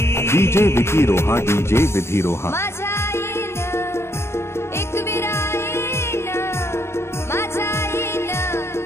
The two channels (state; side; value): late; right; 0.12 ms